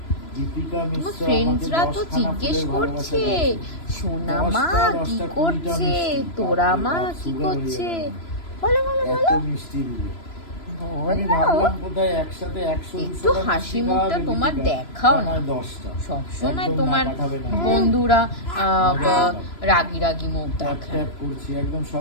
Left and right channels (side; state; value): right; late; 3.0 ms